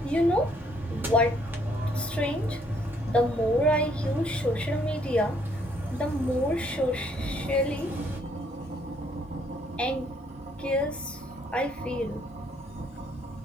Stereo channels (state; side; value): normal; both; correlation 0.67